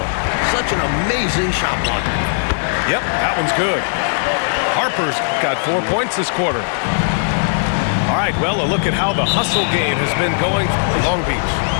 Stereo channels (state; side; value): silent; right; 68 dB below the other